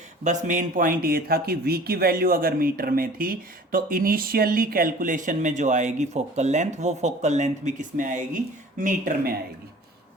बस मेन पॉइंट ये था कि v की वैल्यू अगर मीटर में थी तो इनिशियली कैलकुलेशन में जो आएगी फोकल लेंथ, वो फोकल लेंथ भी किस में आएगी, मीटर में आएगी।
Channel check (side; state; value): both; normal; correlation 0.46